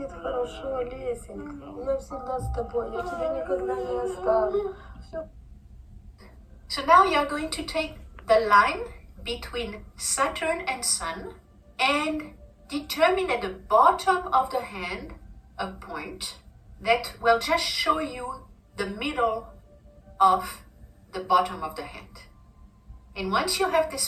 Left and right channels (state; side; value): identical; both; correlation 1.00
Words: хорошо, Лесенька. Я всегда с тобой, я тебя никогда не оставлю. So now you are going to take the line between Saturn and Sun and determine at the bottom of the hand a point that will just show you the middle of the bottom of the hand. And once you have this